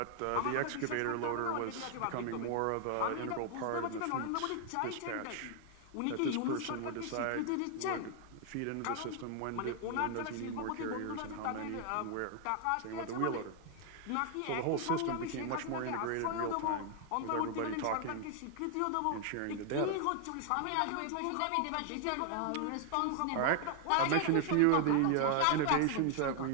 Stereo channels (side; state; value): both; different; correlation 0.00